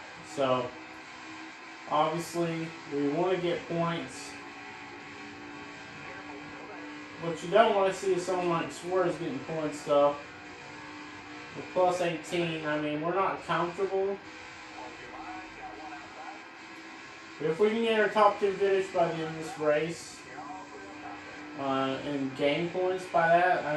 So obviously we want to get points. What you don't want to see is someone like Suarez getting points though. With plus 18, I mean, we're not comfortable. But if we can get our top 2 finish by the end of this race and gain points by that, I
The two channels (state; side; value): identical; both; correlation 1.00